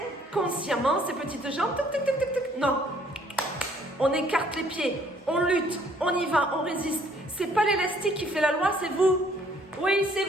ces petites jambes, tic, tic, tic, tic, tic. Non. On écarte les pieds, on lutte, on y va, on résiste. C'est pas l'élastique qui fait la loi, c'est vous. Oui, c'est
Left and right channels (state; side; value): normal; both; correlation 0.62